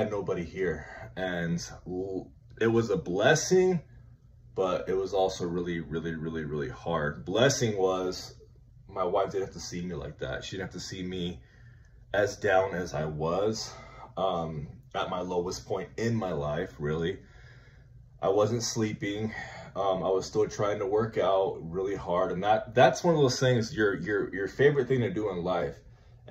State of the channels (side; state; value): both; identical; correlation 1.00